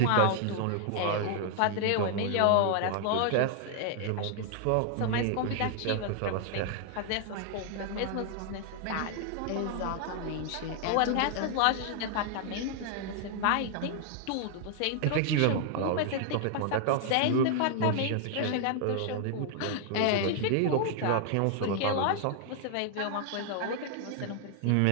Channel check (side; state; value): both; different; correlation 0.00